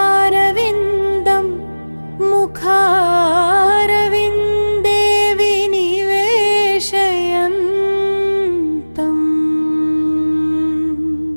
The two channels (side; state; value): both; inverted; correlation -1.00